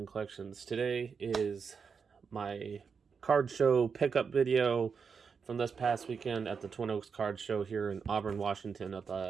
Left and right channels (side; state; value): left; quieter; 5.8 dB